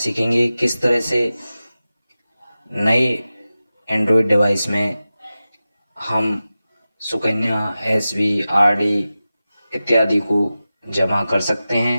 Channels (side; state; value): both; inverted; correlation -0.95